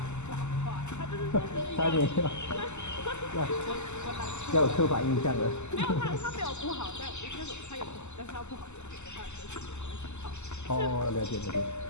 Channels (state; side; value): late; right; 0.83 ms